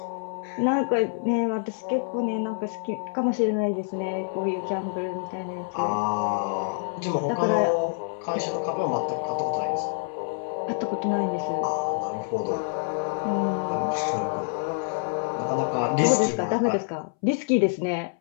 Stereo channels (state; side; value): silent; right; 60 dB below the other